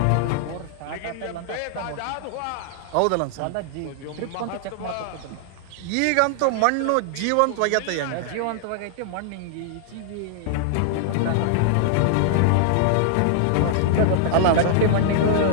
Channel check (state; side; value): different; both; correlation -0.01